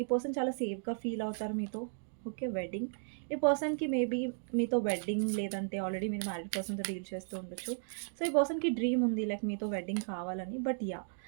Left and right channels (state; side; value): silent; left; digital silence